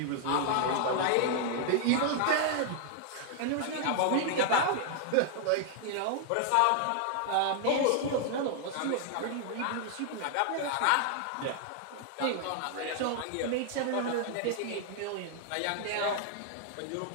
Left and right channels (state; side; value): different; both; correlation 0.00